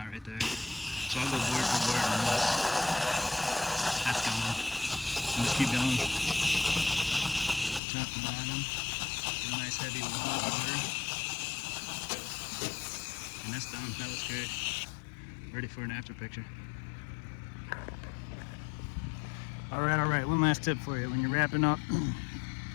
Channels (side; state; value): right; drops out; at 7.8 s